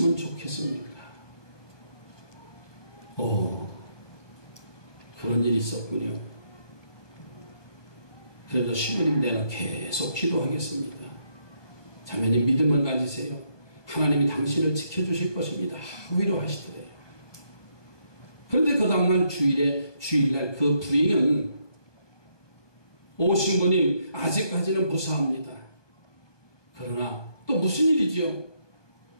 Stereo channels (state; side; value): late; right; 1.2 ms